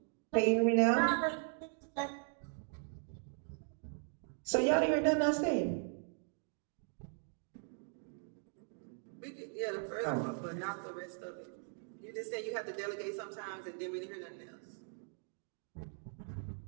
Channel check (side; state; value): left; silent; 52 dB below the other